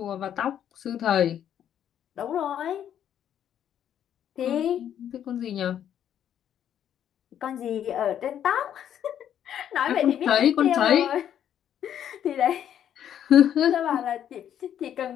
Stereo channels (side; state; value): right; quieter; 9.9 dB